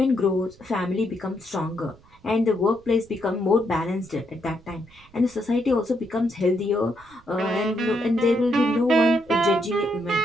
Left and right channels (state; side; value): noise; right; rumble, 27 dB below the sound